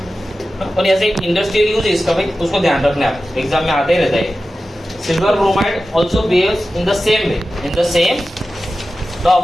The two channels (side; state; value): both; normal; correlation 0.94